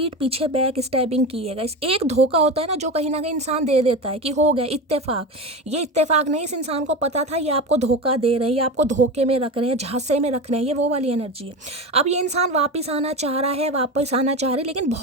पीछे बैक स्टैबिंग की है गाइस। एक धोखा होता है ना जो कहीं ना कहीं इंसान दे देता है कि हो गया इत्तेफाक। ये इत्तेफाक नहीं, इस इंसान को पता था ये आपको धोखा दे रहे हैं, ये आपको धोखे में रख रहे हैं, झांसे में रख रहे हैं, ये वो वाली एनर्जी है। अब ये इंसान वापस आना चाह रहा है, वापस आना चाह रहे, लेकिन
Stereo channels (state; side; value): normal; both; correlation 0.24